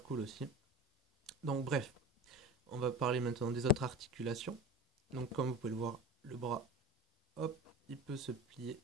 cool aussi. Donc bref, on va parler maintenant des autres articulations. Donc comme vous pouvez le voir, le bras, hop, il peut se plier.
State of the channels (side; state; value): both; normal; correlation 0.32